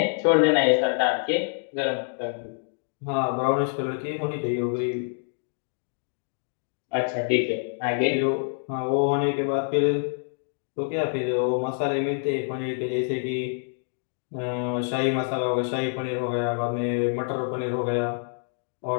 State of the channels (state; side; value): silent; right; 61 dB below the other